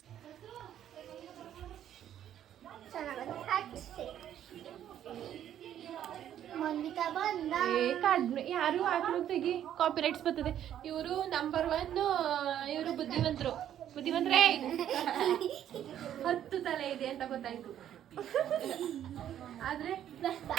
ಕಡಿಮೆ ಯಾರು ಹಾಕ್ಲು ತೆಗಿ ಕಾಪಿರೈಟ್ಸ್ ಬರ್ತದೆ ಇವರು ನಂಬರ್ 1 ಇವರು ಬುದ್ಧಿವಂತರೇ 10 ತಲೆ ಇದೆ ಅಂತ ಗೊತ್ತಾಯ್ತು ಆದ್ರೆ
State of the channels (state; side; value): quieter; left; 10.7 dB